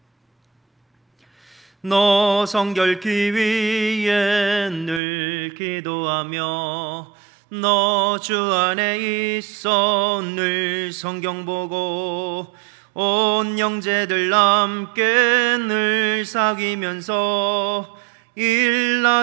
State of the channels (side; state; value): left; drops out; at 5.0 s